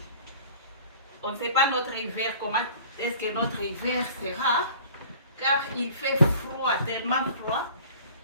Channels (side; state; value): both; inverted; correlation -0.47